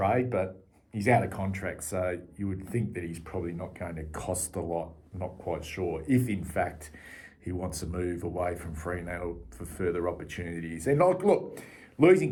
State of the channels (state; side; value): identical; both; correlation 1.00